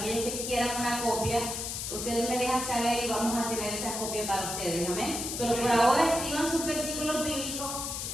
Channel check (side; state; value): left; noise; hiss, 4 dB below the sound